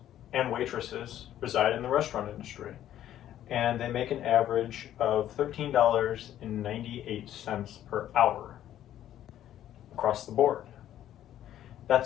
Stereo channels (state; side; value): quieter; right; 11.8 dB